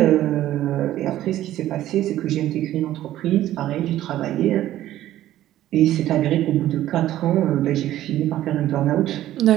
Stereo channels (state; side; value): quieter; left; 13.5 dB